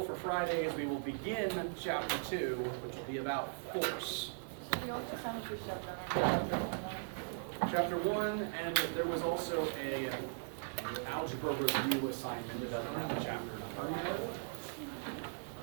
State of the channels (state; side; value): silent; left; digital silence